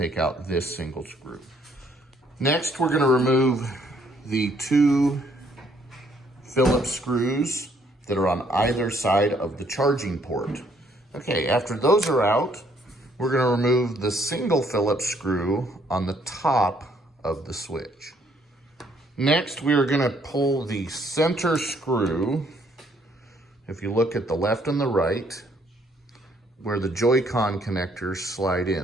out this single screw. Next, we're gonna remove the 2 Phillips screws that are on either side of the charging port. Okay, after those are out, we're gonna remove the single Phillips screw on the top of the switch. Next, we are gonna pull the center screw. If you look at the left and the right, where the Joy-Con connectors slide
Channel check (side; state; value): both; normal; correlation 0.67